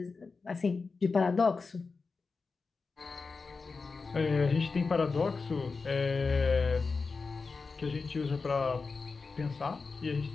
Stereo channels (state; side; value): quieter; right; 4.4 dB